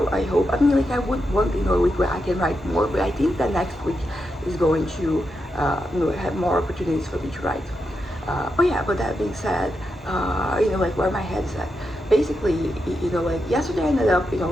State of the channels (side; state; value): both; normal; correlation 0.86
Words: I hope. I mean, like I would want a week where I can write more, but I think that next week is going to have more opportunities for me to write. But yeah, but that being said, like where my head's at. Basically, like yesterday I ended up, I